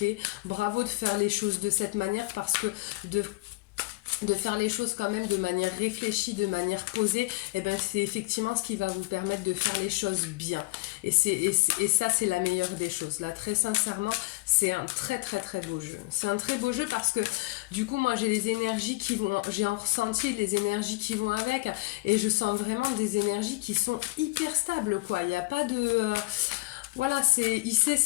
Bravo de faire les choses de cette manière parce que de faire les choses quand même de manière réfléchie, de manière posée, et ben c'est effectivement ce qui va vous permettre de faire les choses bien. Et ça, c'est la meilleure des choses. Là, très sincèrement, c'est un très très très beau jeu. C'est un très beau jeu parce que du coup, moi, j'ai les énergies j'ai un ressenti, les énergies qui vont avec, et je sens vraiment des énergies qui sont hyper stables, quoi. Il n'y a pas de... Voilà, il sait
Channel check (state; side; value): quieter; right; 23.4 dB